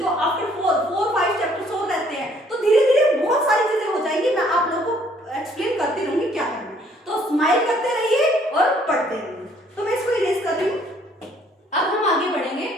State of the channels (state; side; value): normal; both; correlation 0.62